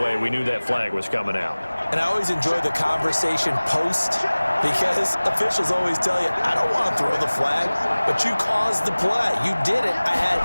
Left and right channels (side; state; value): both; inverted; correlation -1.00